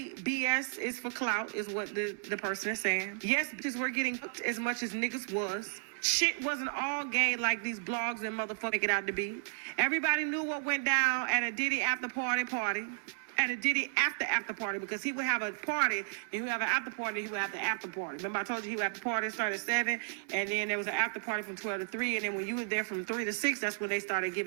BS is for clout, is what the person is saying. Yes, bitches were getting hooked as much as niggas was. Shit wasn't all gay like these blogs and motherfuckers make it out to be. Everybody knew what went down at a Diddy after party. At a Diddy after party, because he would have a party and he would have an after party, he would have the after party. Remember I told you he would have the party start at 7, and then there was an after party from 12 to 3, and then when you were there from 3 to 6, that's when they started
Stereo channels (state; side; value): silent; left; digital silence